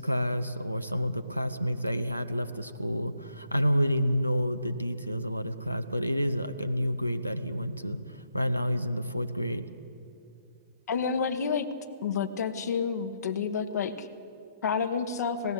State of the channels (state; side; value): inverted; both; correlation -0.77